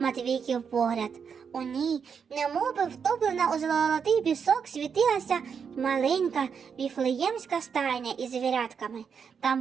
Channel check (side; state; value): left; quieter; 6.6 dB